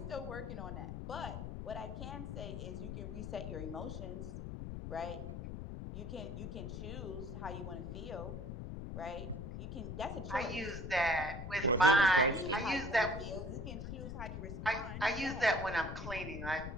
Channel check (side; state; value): left; noise; rumble, 6 dB below the sound